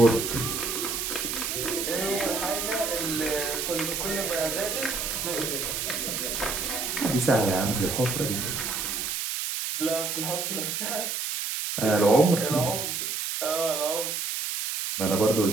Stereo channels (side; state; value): right; noise; hiss, 2 dB below the sound